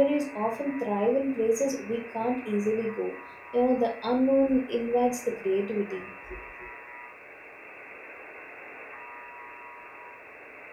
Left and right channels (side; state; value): both; identical; correlation 1.00